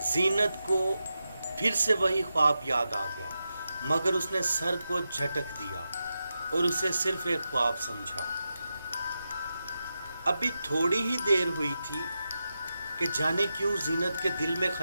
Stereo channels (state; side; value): inverted; both; correlation -0.89